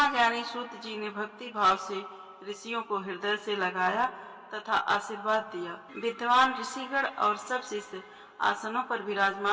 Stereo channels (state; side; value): identical; both; correlation 1.00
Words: सूत जी ने भक्ति भाव से ऋषियों को हृदय से लगाया तथा आशीर्वाद दिया। विद्वान ऋषिगण और सब शिष्य आसनों पर